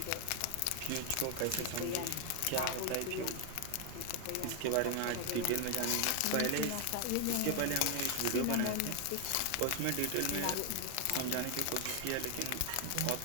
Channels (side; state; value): both; different; correlation 0.00